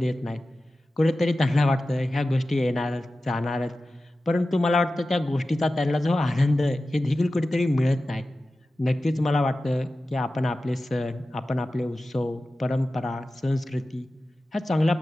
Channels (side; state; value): both; normal; correlation 0.94